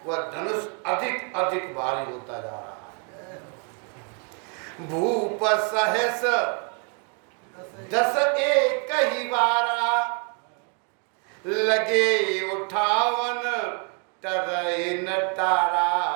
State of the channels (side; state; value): left; quieter; 37.8 dB